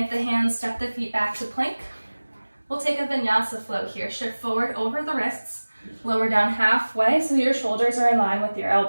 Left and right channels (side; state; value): both; inverted; correlation -1.00